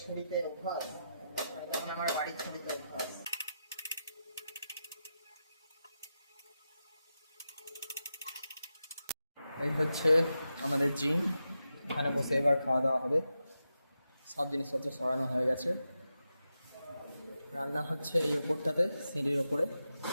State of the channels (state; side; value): inverted; both; correlation -0.88